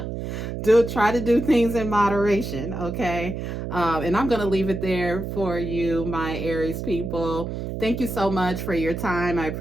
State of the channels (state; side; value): noise; right; hum, 5 dB below the sound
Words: Try to do things in moderation, okay? And I'm going to leave it there for you, my Aries people. Thank you so much for your time. I